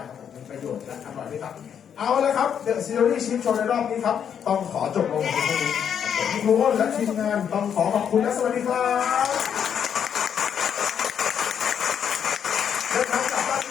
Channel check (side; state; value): right; quieter; 8.2 dB